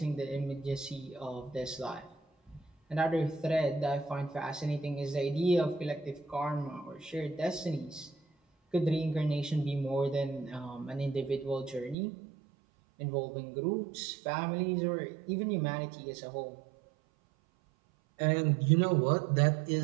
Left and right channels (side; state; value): left; drops out; at 12.0 s